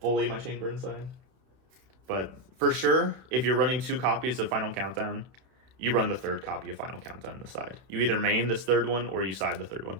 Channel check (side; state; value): left; late; 31 ms